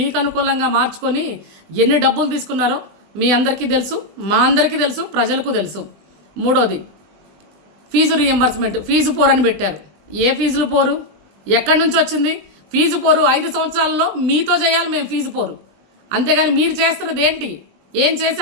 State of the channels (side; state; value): left; late; 20 ms